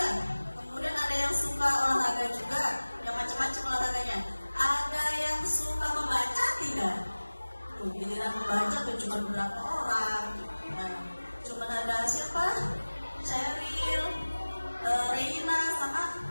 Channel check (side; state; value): both; inverted; correlation -1.00